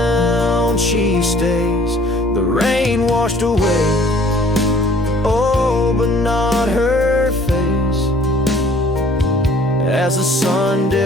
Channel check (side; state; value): both; normal; correlation 0.55